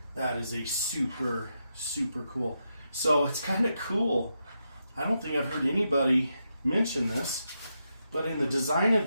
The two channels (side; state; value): both; inverted; correlation -0.84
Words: That is a super, super cool. So it's kind of cool. I don't think I've heard anybody mention this, but in the design of